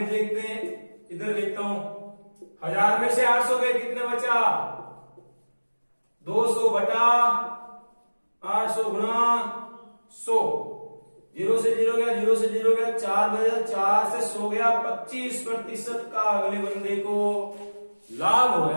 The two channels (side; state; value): both; inverted; correlation -1.00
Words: देखते हैं, इधर देखता हूं, 1000 में से 800 गए, कितने बचा, 200 बटा 800 गुणा 100। 0 से 0 गया, 0 से 0 गया, 4 बजा, 4 से 100 गया, 25% का अगले बंदे को लाभ हो